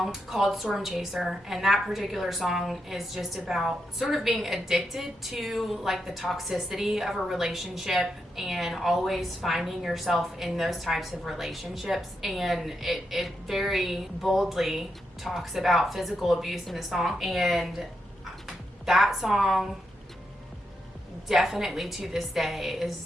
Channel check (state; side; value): normal; both; correlation 0.84